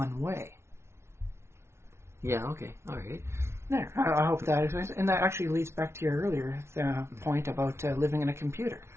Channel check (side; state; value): left; late; 0.13 ms